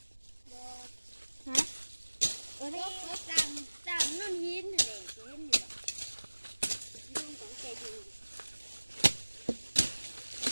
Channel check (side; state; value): both; inverted; correlation -1.00